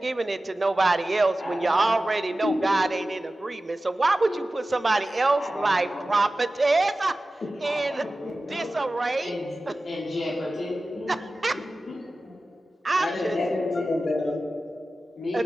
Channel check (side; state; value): both; normal; correlation 0.95